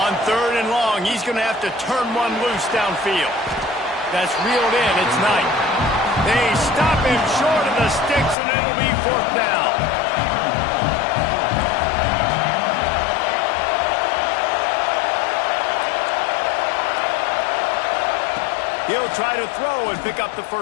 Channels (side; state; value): right; drops out; at 8.3 s